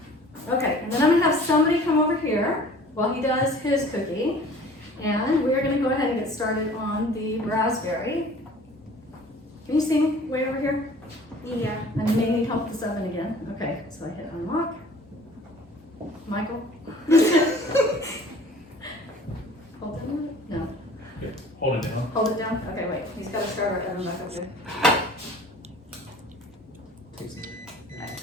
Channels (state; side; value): normal; both; correlation 0.49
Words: Okay, and then I'm gonna have somebody come over here while he does his cookie, and we're gonna go ahead and get started on the raspberry. Can you see me way over here? Yeah. And you may need help with this oven again. Okay, so I hit unlock. Michael? Hold it down? No. Yeah, hold it down. Hold it down? Okay, wait. He's got to start our oven back up here.